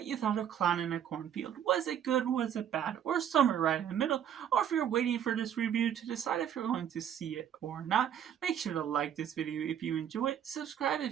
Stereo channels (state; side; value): quieter; left; 9.5 dB